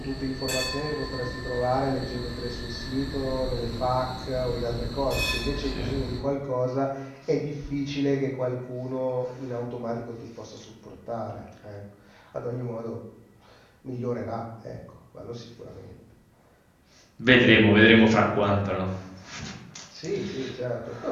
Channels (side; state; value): both; identical; correlation 1.00